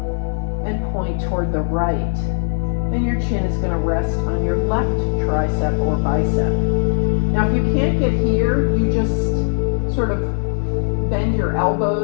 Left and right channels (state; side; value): silent; right; digital silence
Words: and point toward the right. And your chin is going to rest on your left tricep or bicep. Now, if you can't get here, you just sort of bend your